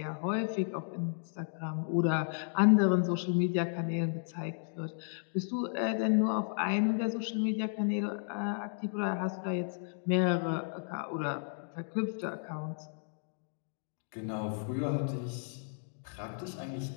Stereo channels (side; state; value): right; silent; digital silence